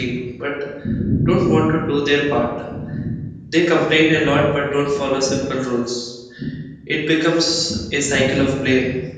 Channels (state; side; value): identical; both; correlation 1.00